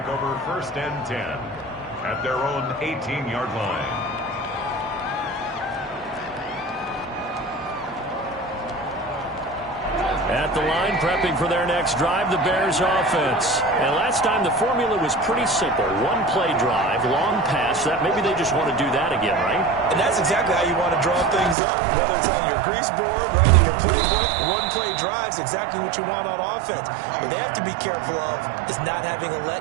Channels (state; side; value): drops out; left; at 21.6 s